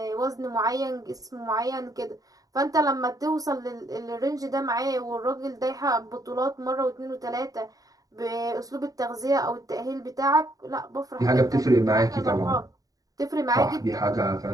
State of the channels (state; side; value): late; left; 0.18 ms